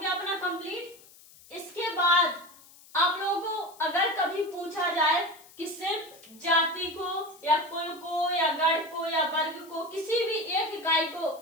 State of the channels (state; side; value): noise; left; hiss, 23 dB below the sound